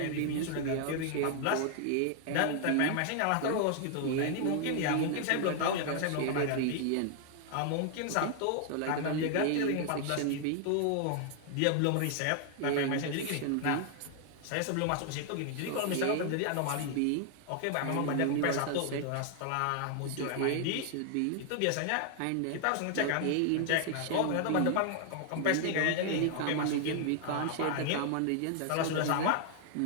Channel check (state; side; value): different; both; correlation 0.00